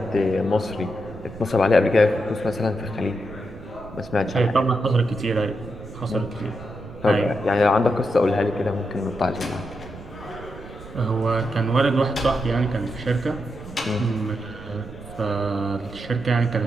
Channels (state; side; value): noise; right; rumble, 16 dB below the sound